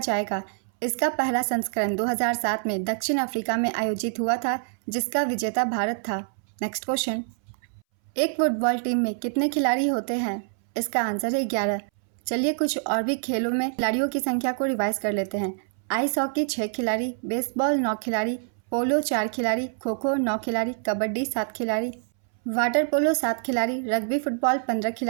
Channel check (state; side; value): silent; left; 61 dB below the other